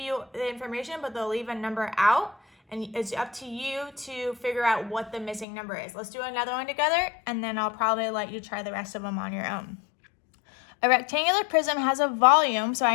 the information, but they'll leave a number out. And it's up to you to figure out what the missing number is. Let's do another one together, and then I'll probably let you try the rest of them on your own. A rectangular prism has a volume, so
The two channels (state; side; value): drops out; right; at 5.5 s